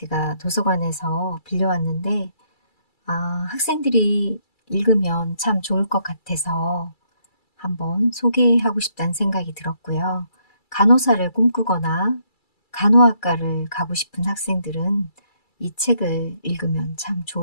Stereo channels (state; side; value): late; right; 2.3 ms